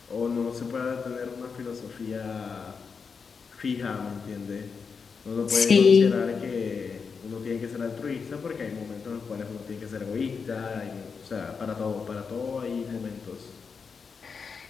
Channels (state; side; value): quieter; right; 5.6 dB